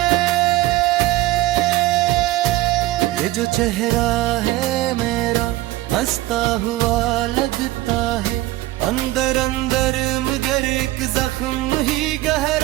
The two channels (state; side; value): quieter; left; 17.3 dB